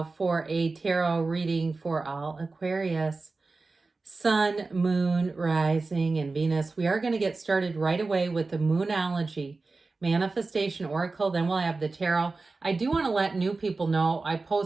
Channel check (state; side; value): quieter; left; 3.8 dB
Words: for a tarot reading for all Aquarius. Sun, Moon, Rising, and Venus. We are going to get started right away with the Moonology Manifestation Oracle. Then we'll have the tarot. I do want to let new people know I